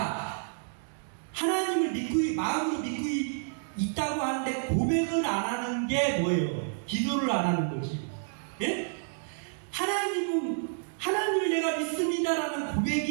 하나님을 마음으로 믿고 있다고 하는데 고백을 안 하는 게 뭐예요? 기도를 안 하는 거지. 예? 하나님을 내가 믿습니다라는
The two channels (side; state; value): left; silent; digital silence